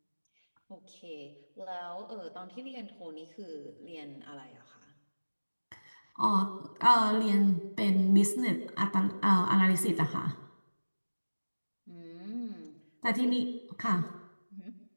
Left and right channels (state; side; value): inverted; both; correlation -1.00